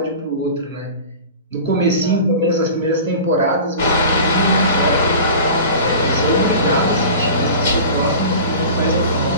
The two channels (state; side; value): inverted; both; correlation -0.37